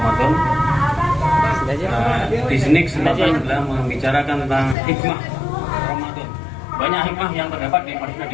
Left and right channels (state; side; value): drops out; right; at 4.8 s